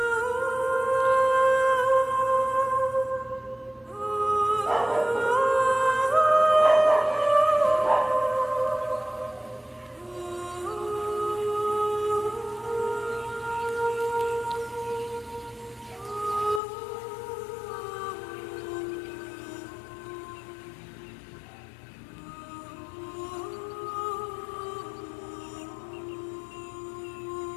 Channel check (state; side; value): drops out; right; at 16.6 s